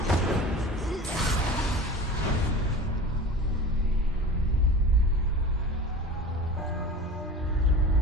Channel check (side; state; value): both; normal; correlation 0.35